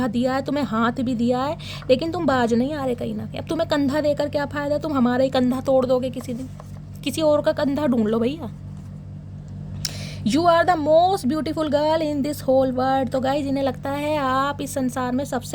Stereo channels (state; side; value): identical; both; correlation 1.00